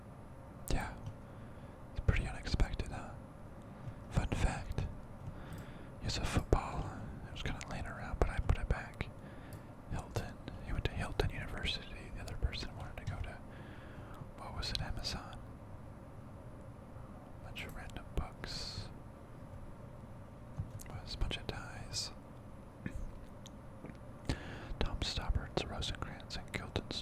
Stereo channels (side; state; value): both; identical; correlation 1.00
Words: Yeah, it's pretty unexpected, huh? Fun fact, here's a football. It was kind of laying around, but I put it back. Hilton. He went to Hilton University. The other person wanted to go to, what was it, Amazon? Bunch of random books. Was a bunch of ties. Tom Stoppart's Rosencrantz and